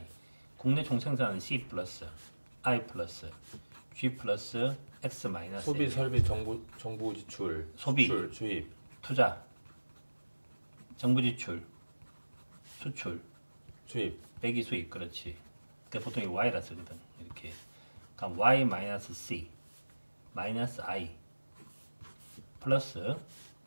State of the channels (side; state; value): both; inverted; correlation -1.00